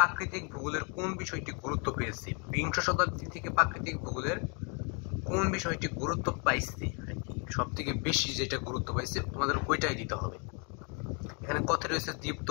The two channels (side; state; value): right; quieter; 36.5 dB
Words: ভূগোলের কোন বিষয়টি গুরুত্ব পেয়েছে? বিংশ শতাব্দী থেকে প্রাকৃতিক ভূগোলের কোন বিষয়টি গুরুত্ব পাইছে, সব থেকে বেশি যেটা গুরুত্ব পাইছে তোমাদের ওইটাই দিতে হবে। এখানে কতে রয়েছে